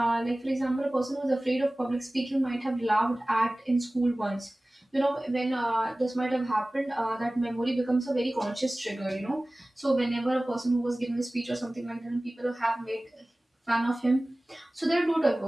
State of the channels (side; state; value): both; normal; correlation 0.98